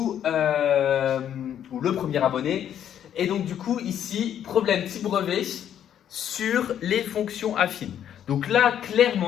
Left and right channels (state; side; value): quieter; right; 9.9 dB